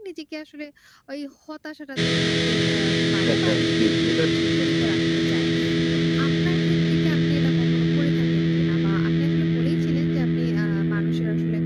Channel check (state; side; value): identical; both; correlation 1.00